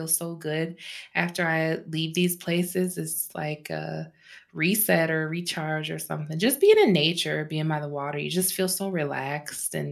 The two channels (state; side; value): identical; both; correlation 1.00